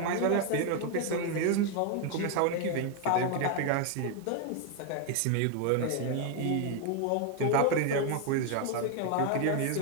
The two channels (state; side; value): different; both; correlation 0.01